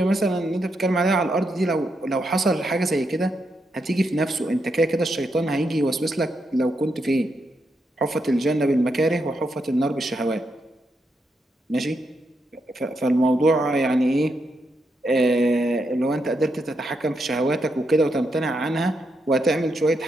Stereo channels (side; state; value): both; normal; correlation 0.82